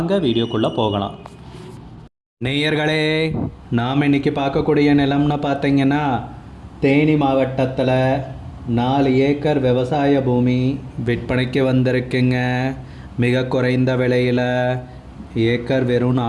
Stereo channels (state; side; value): identical; both; correlation 1.00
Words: வீடியோக்குள்ளே போகலாம். நேயர்களே, நாம் இன்றைக்கி பார்க்கக்கூடிய நிலம்னு பார்த்தீங்கன்னா தேனி மாவட்டத்தில் 4 ஏக்கர் விவசாய பூமி விற்பனைக்கு வந்திருக்குங்க. மிக குறைந்த விலையில் ஏக்கர் வெறும்